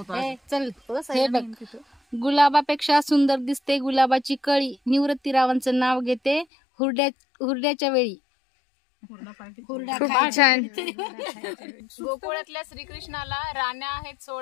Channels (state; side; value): drops out; right; at 6.5 s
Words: गुलाबापेक्षा सुंदर दिसते गुलाबाची कळी, निवृत्तीरावांचं नाव घेते हुरड्याच्या वेळी. गोकुळातल्या श्रीकृष्णाला राण्या आहेत